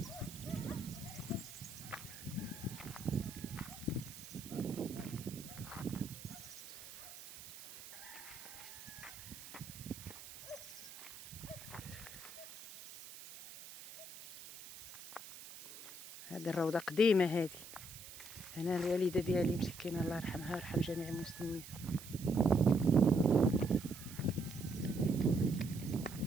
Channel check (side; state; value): right; noise; hiss, 14 dB below the sound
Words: هذه الروضة قديمة هذه. أنا الوالدة ديالي مسكينة الله يرحمها ويرحم جميع المسلمين.